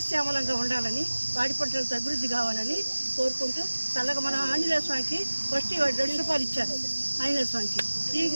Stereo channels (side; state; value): both; inverted; correlation -1.00